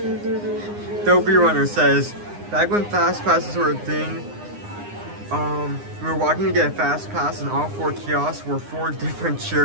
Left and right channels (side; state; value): left; late; 9.8 ms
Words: Dopey Runner says, back when fast passes were a thing, we were walking to get a fast pass and all 4 kiosks were 4 different cheer